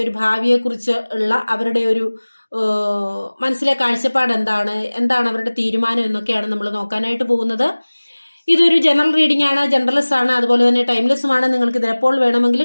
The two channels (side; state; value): both; inverted; correlation -1.00